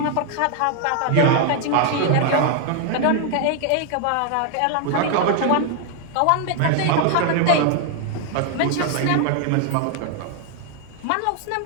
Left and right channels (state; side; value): different; both; correlation 0.00